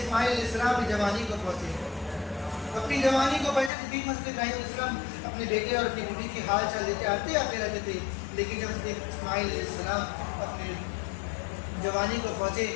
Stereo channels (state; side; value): drops out; right; at 3.7 s